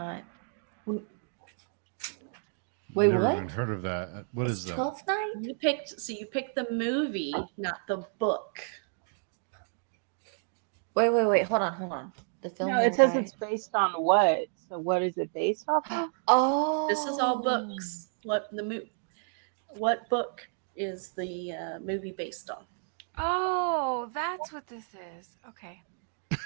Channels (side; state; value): left; silent; 57 dB below the other